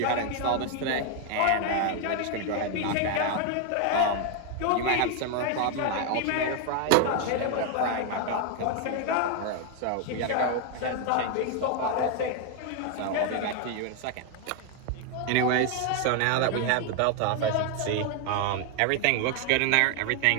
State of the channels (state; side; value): different; both; correlation 0.01